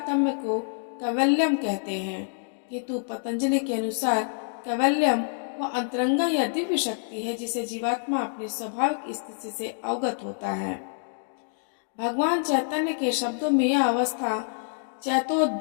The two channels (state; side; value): silent; right; digital silence